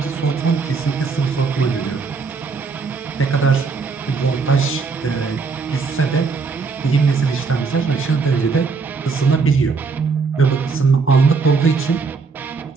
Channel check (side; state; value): left; quieter; 4.7 dB